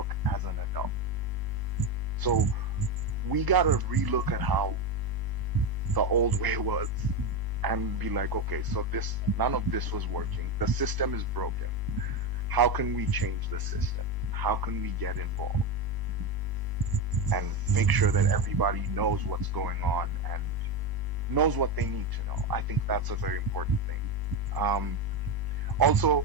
as an adult. So we gotta relook at how the old way was and be like, okay, so none of this was working. The system is broken. How can we change the system? How can we get involved? And make sure that everybody knows what's going on and knows what they need to know. I think that's a very important thing. Also,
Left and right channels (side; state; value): left; late; 1.0 ms